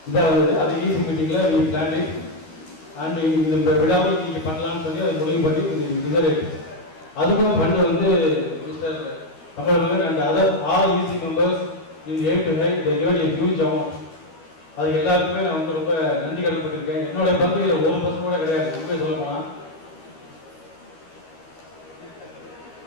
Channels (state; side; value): late; right; 13 ms